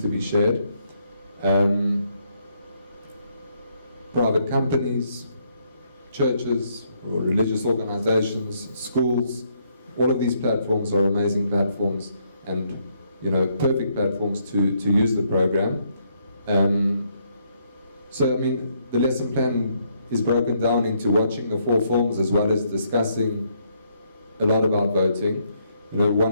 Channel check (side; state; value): both; inverted; correlation -0.73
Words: shared. Private companies, churches, or religious organizations, schools, all of these platforms are amazing platforms, and perfect platforms to use the program. So I mean, the lesson plan is broken down into watching the 4 films as well as discussing a lot about voting.